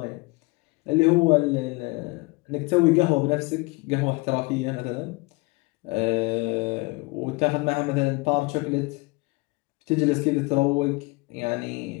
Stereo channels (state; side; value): quieter; right; 25.7 dB